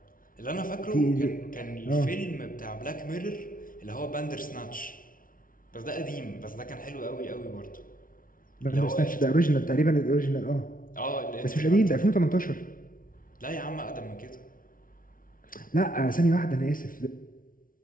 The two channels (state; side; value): late; right; 0.40 ms